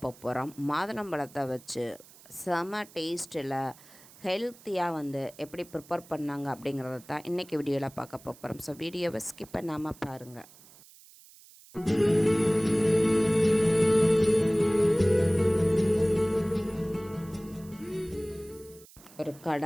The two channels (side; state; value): right; noise; hiss, 23 dB below the sound